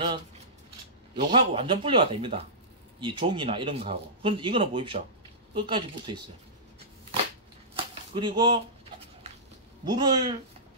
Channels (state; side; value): normal; both; correlation -0.18